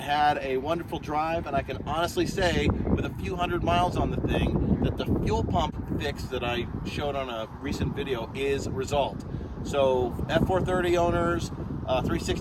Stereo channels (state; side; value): identical; both; correlation 1.00